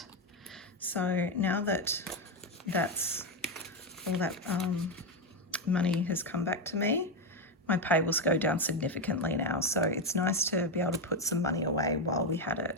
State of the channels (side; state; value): both; normal; correlation 0.08